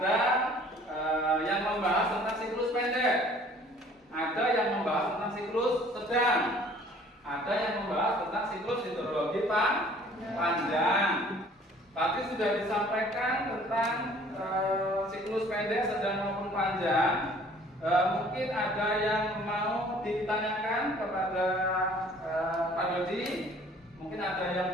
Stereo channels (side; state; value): both; normal; correlation 0.54